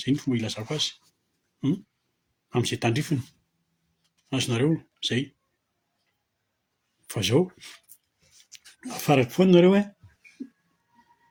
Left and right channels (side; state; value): both; identical; correlation 1.00